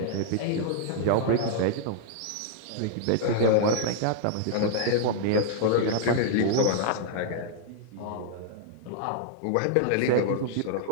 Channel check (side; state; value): both; different; correlation -0.01